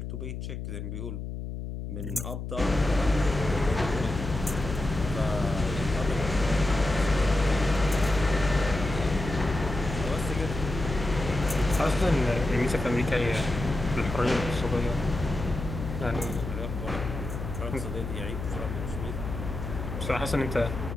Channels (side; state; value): left; noise; hum, 6 dB below the sound